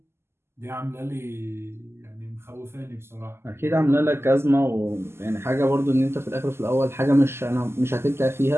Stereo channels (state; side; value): late; left; 0.12 ms